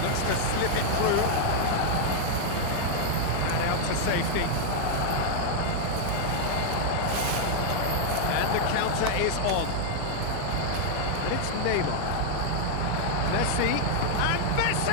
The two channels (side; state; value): both; different; correlation -0.01